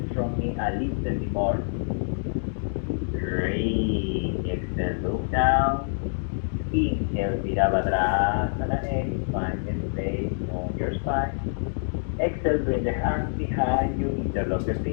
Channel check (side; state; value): right; silent; digital silence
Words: from me a little bit more. 3, exhale, look down. Inhale, Virabhadrasana 8. Find a space on your spine. Exhale, bring the hands behind you, interlock the